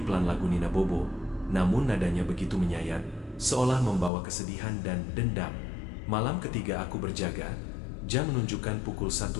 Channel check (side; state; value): right; drops out; at 4.1 s